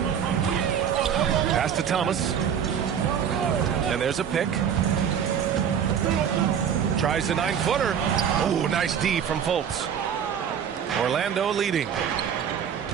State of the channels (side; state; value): left; quieter; 8.3 dB